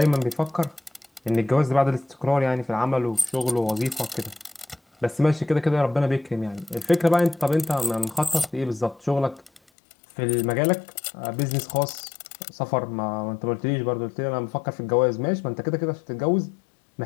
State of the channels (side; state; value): right; drops out; at 9.6 s